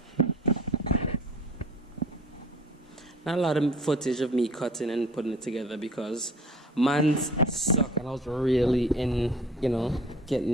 Not a lot of footage of me cutting and putting it together because man's suck, and I was really in, getting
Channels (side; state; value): both; normal; correlation 0.48